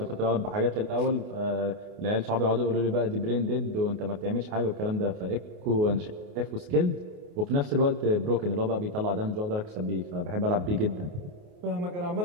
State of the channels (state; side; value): late; left; 28 ms